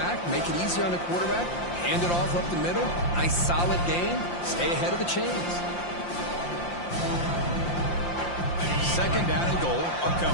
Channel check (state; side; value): late; right; 5.7 ms